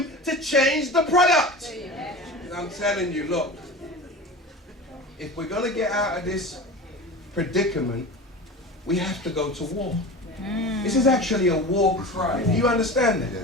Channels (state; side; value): normal; both; correlation 0.32